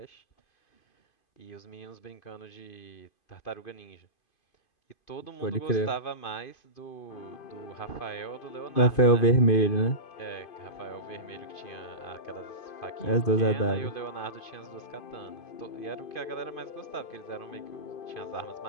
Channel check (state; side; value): late; right; 2.5 ms